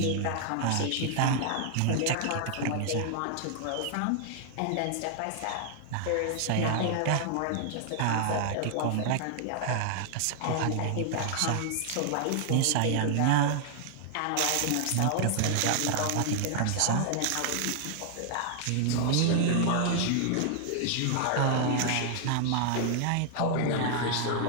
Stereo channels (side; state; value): both; different; correlation 0.00